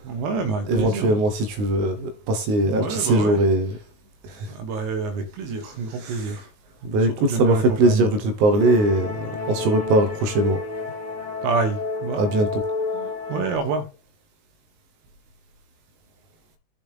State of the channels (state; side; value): late; left; 19 ms